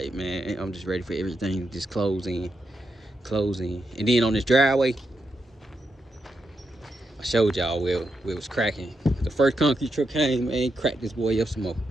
man, I'm just ready for everything to just close in. And then on this driveway, I showed y'all where it was cracking. The first concrete truck came, man, cracked this boy up some more.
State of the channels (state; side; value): normal; both; correlation 0.84